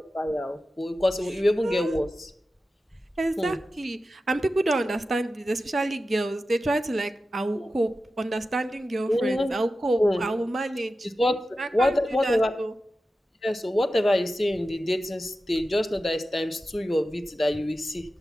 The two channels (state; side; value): normal; both; correlation 0.93